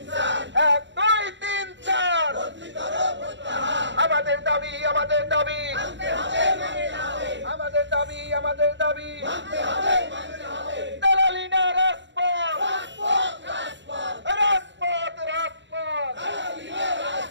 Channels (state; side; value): late; left; 0.53 ms